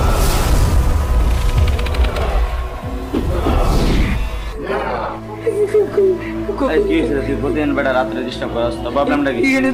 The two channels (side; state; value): both; identical; correlation 1.00